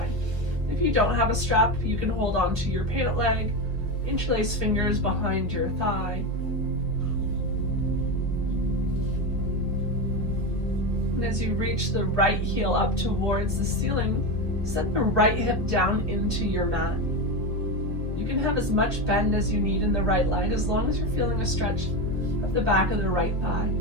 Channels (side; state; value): left; late; 1.2 ms